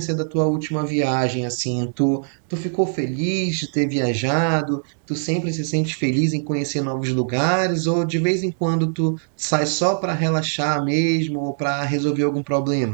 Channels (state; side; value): silent; left; digital silence